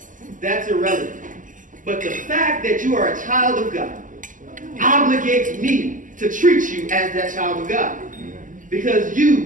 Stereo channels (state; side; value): late; left; 0.38 ms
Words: That's irrelevant. But the fact that you are a child of God obligates me to treat you as that child of God. Because